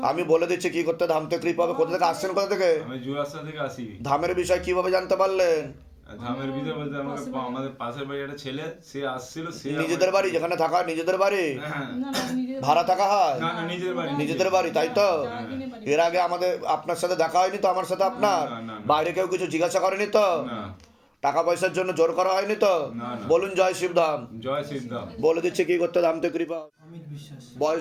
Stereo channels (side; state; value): both; identical; correlation 1.00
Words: আমি বলে দিচ্ছি কি করতে ধামতে কৃপা হবে। কোথা থেকে আসছেন, কোথা থেকে? আমি জুয়াশা থেকে আসি। ধামের বিষয় কিভাবে জানতে পারলেন? ধামের ভিতরে বলতে আমাদের পাশের বাড়ি একটা ছেলে, সে আসছিল, সে নিজেদের বাড়ি যেখানে থাকা, নিজেদের বাড়ি? হ্যাঁ, ভাড়া থাকা হয়? না না, নিজের বাড়ি, নিজেদের বাড়ি, তাই তো? এর আগে আমাদের আপনার সাথে দেখা হয়নি তো? আমার সাথে আপনার না, না, না। বাইরে কেউ কিছু জিজ্ঞাসা করেনি তো? না টাকা পয়সার জন্য জোর করা হয়নি তো? না, না। বলুন জয় শিবধাম। জয় সিদ্ধাম। বলে দিচ্ছে কি করতে ধামতে কৃপা। অমিত বিশ্বাস,